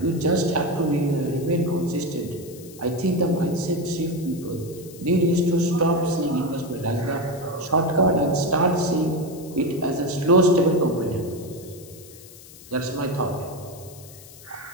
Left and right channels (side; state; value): left; noise; hiss, 19 dB below the sound